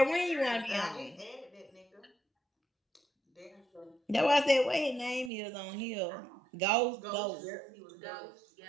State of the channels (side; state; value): left; drops out; at 5.3 s